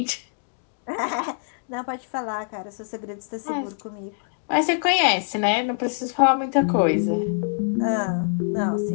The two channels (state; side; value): silent; right; digital silence